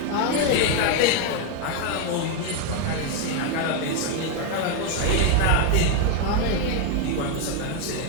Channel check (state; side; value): different; both; correlation 0.01